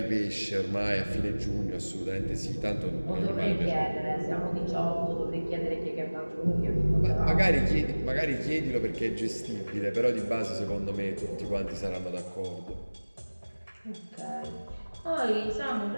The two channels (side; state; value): both; inverted; correlation -1.00